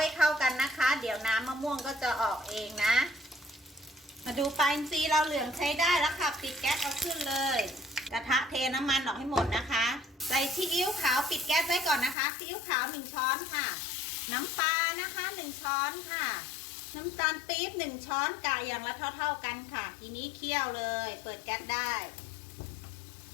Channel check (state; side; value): drops out; right; at 12.2 s